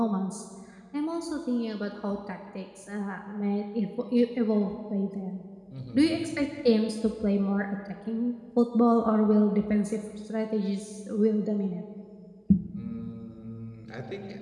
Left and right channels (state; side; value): identical; both; correlation 1.00